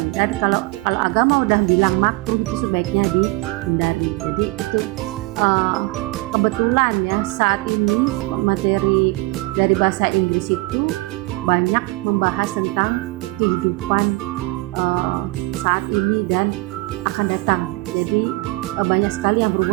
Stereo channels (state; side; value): quieter; left; 22.4 dB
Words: Dan kalau agama udah bilang makruh, itu sebaiknya dihindari. Jadi itu kebetulan ya saat ini materi dari bahasa Inggris itu banyak membahas tentang kehidupan saat ini dan akan datang. Jadi banyak sekali yang